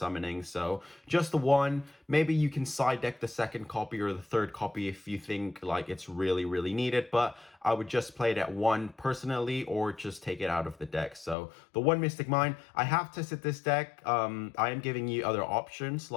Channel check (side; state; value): right; drops out; at 11.4 s